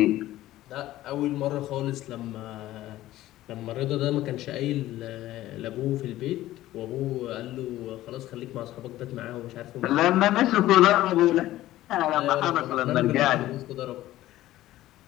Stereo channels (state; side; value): quieter; right; 15.1 dB